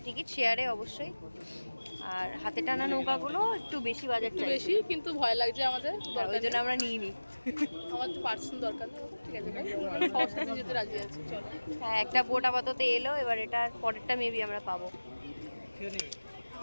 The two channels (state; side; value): inverted; both; correlation -1.00